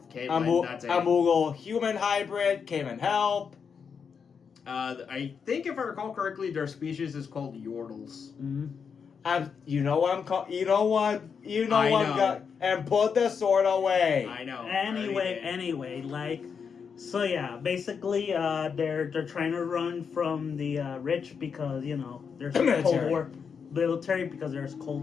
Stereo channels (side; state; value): right; quieter; 6.3 dB